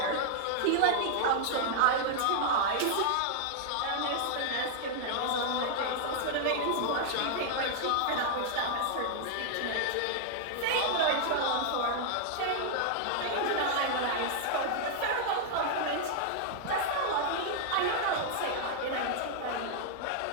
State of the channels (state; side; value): different; both; correlation -0.01